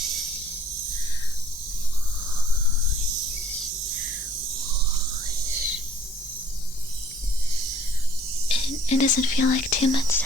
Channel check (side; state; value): both; normal; correlation 0.59